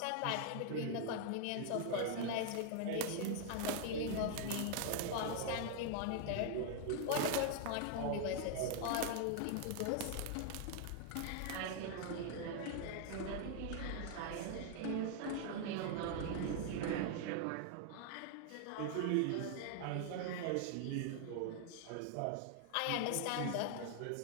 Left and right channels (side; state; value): both; different; correlation 0.00